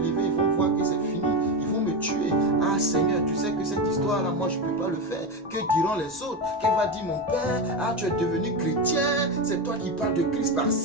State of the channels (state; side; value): normal; both; correlation 0.16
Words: ils vont voir que c'est fini. tuer. Ah Seigneur, tu sais que cette histoire-là, moi je ne peux pas le faire. Que diront les autres? Qu'elle va dire mon père? Ah, tu es devenu chrétien, c'est toi qui parles de Christ